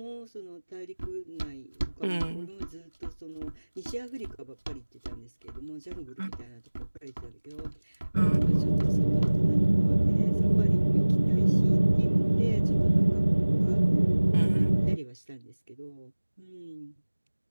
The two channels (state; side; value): inverted; both; correlation -1.00